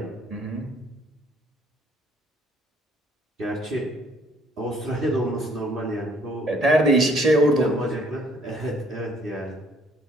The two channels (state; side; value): normal; both; correlation 0.63